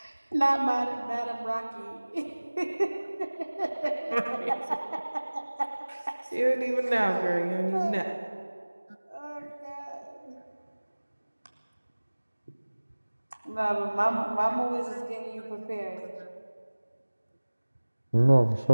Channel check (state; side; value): inverted; both; correlation -1.00